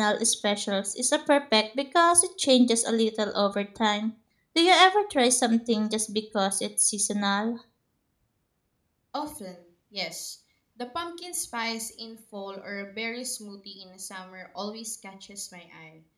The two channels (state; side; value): identical; both; correlation 1.00